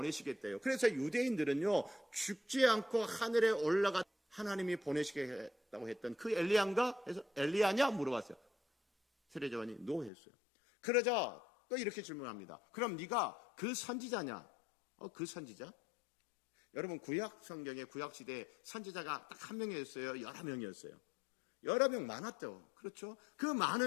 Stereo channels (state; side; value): drops out; right; at 10.1 s